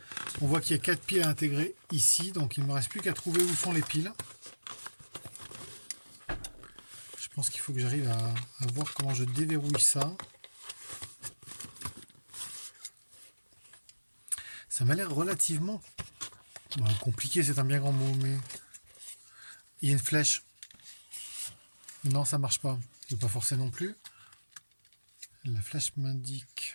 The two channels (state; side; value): inverted; both; correlation -1.00